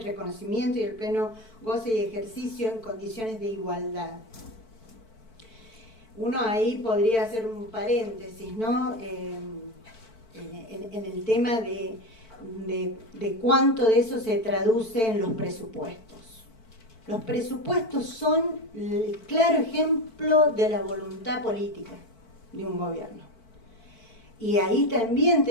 reconocimiento y el pleno goce y ejercicio en condiciones de igualdad. Uno ahí podría hacer un paréntesis, ¿no? En el tema de cuánto de eso se traduce en los presupuestos. Los presupuestos son el claro ejemplo de la voluntad política de un gobierno. Y ahí también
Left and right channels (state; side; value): late; right; 4.5 ms